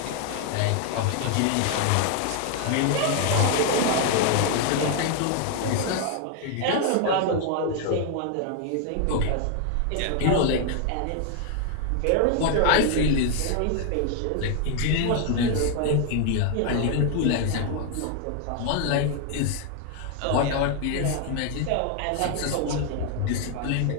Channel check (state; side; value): different; both; correlation 0.00